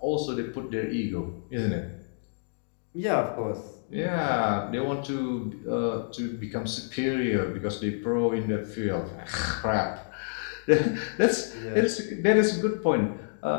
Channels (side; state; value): right; silent; digital silence